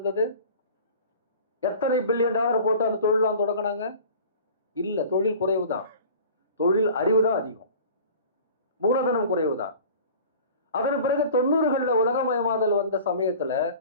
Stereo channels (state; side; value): inverted; both; correlation -0.43